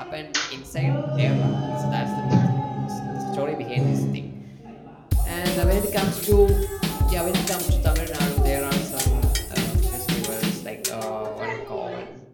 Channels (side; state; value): both; identical; correlation 1.00